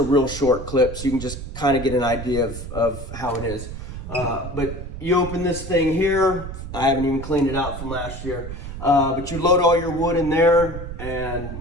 real short clip, so you can just kind of get an idea of how it is. But you open this thing here. I haven't even cleaned it out from last year. But you load all your wood in there,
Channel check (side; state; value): right; noise; rumble, 9 dB below the sound